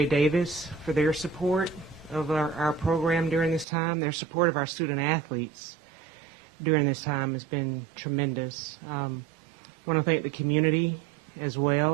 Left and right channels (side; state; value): left; drops out; at 3.7 s